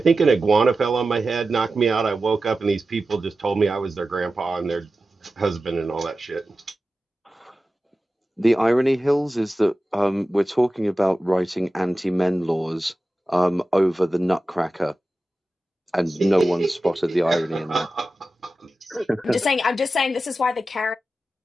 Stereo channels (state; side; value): normal; both; correlation 0.94